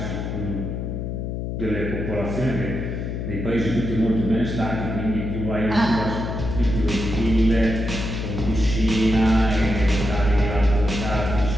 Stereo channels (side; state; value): left; noise; hum, 4 dB below the sound